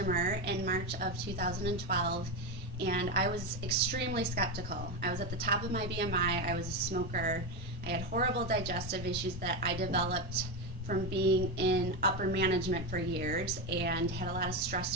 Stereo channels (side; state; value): both; normal; correlation 0.13